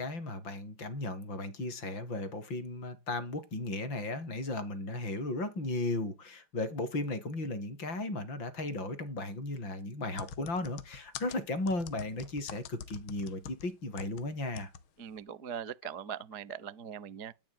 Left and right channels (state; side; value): late; right; 5.8 ms